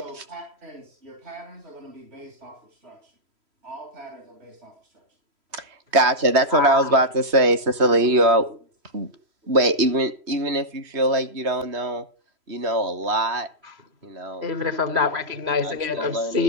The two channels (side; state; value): left; late; 3.0 ms